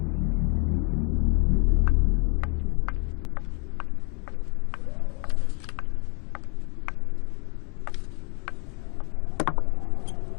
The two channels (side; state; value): right; quieter; 34.9 dB